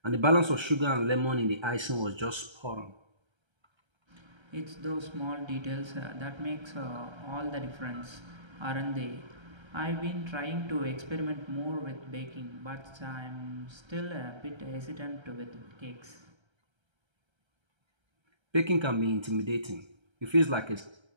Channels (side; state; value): left; late; 1.3 ms